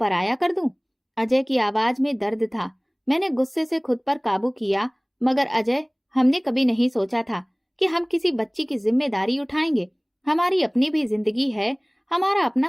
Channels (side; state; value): both; identical; correlation 1.00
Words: कर दूं? अजय की आवाज में दर्द था। मैंने गुस्से से खुद पर काबू किया, मगर अजय, हमने कभी नहीं सोचा था कि हम किसी बच्ची की जिम्मेदारी उठाएंगे। हमारी अपनी भी जिंदगी है, हमारा